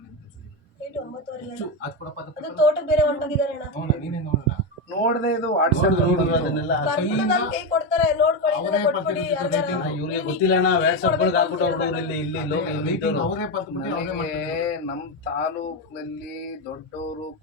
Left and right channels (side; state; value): both; normal; correlation 0.11